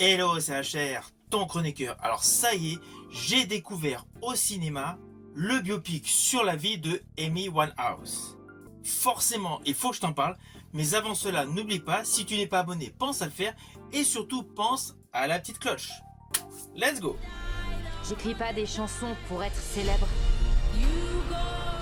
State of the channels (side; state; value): both; identical; correlation 1.00